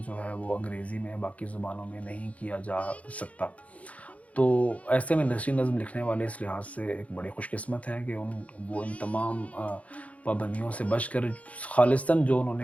جو ہے وہ انگریزی میں باقی زبانوں میں نہیں کیا جا سکتا۔ تو ایسے میں نثری نظم لکھنے والے اس لحاظ سے ایک بڑے خوش قسمت ہیں کہ وہ ان تمام پابندیوں سے بچ کر خالصتاً جو انہوں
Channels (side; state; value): right; late; 0.066 ms